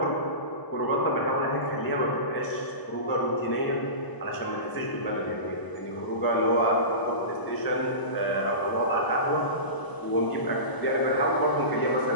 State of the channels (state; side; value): late; right; 1.0 ms